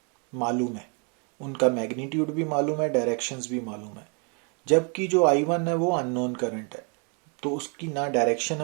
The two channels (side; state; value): left; quieter; 36.9 dB